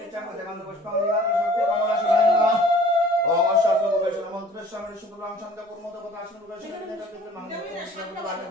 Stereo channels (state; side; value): normal; both; correlation 0.50